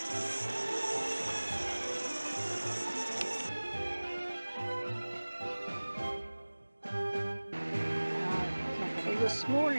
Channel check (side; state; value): both; inverted; correlation -1.00